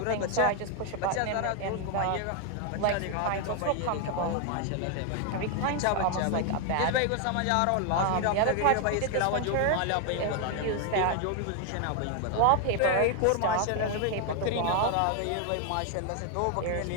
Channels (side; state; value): both; different; correlation 0.00